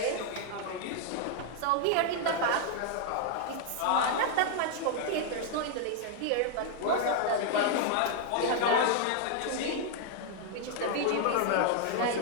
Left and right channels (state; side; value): different; both; correlation 0.00